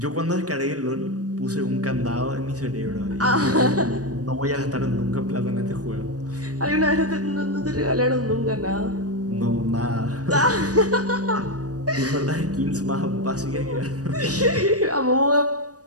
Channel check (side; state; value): left; late; 0.67 ms